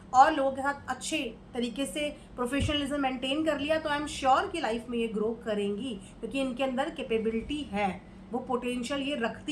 और लोगों के साथ अच्छे तरीके से प्रोफेशनलिज्म मेंटेन कर लिया, तो आई एम श्योर कि लाइफ में ये ग्रो करेंगी, क्योंकि इनके अंदर कैपेबिलिटी है। वो पोटेंशियल ये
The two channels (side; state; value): both; identical; correlation 1.00